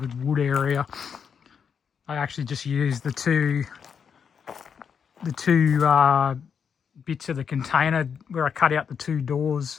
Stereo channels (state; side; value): quieter; right; 6.9 dB